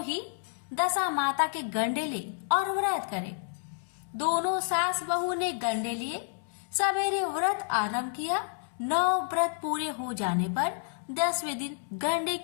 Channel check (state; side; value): silent; right; 58 dB below the other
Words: ही दशा माता के गंडे ले और व्रत करें। दोनों सास बहू ने गंडे लिए। सवेरे व्रत आरंभ किया। 9 व्रत पूरे हो जाने पर 10वें दिन गंडे